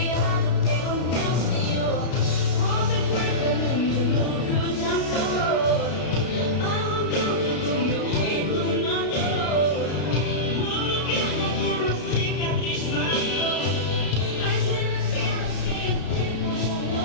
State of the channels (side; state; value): right; late; 34 ms